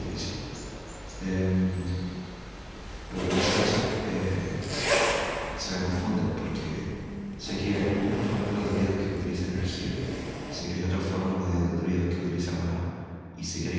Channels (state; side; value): identical; both; correlation 1.00